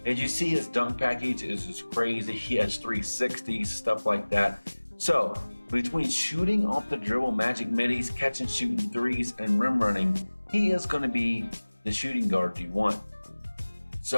As you see, his dunk package is just crazy. He has 360s, stuff like that. So between shooting off the dribble, magic middies, catch and shooting threes, and rim running, he is going to be the shooting guard you want.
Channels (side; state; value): both; inverted; correlation -1.00